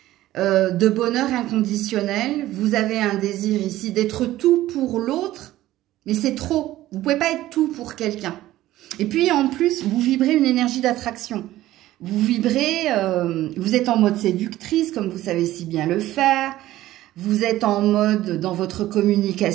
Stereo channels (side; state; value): left; quieter; 15.1 dB